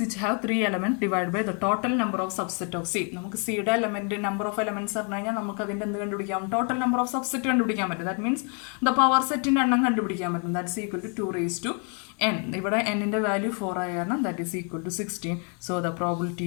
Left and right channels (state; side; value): quieter; right; 38.8 dB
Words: which have 3 elements divided by the total number of subset of C. നമുക്ക് സിയുടെ എലമെന്റ് നമ്പർ ഓഫ് എലമെന്റ്സ് പറഞ്ഞു കഴിഞ്ഞാൽ നമുക്ക് അതിൻ്റെ എന്ത് കണ്ടുപിടിക്കാം? ടോട്ടൽ നമ്പർ ഓഫ് സബ്സെറ്റ് കണ്ടുപിടിക്കാൻ പറ്റും. ദാറ്റ് മീൻസ് ദ പവർ സെറ്റിൻ്റെ എണ്ണം കണ്ടുപിടിക്കാൻ പറ്റും. That's equal to 2⁴n. ഇവിടെ എന്നിൻ്റെ വാല്യൂ 4 ആയ കാരണം that is equal to 16. So the